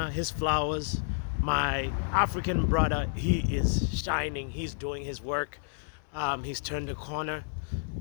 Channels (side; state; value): right; silent; 58 dB below the other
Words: his flowers. My African brother, he is shining. He's doing his work. He's turned the corner,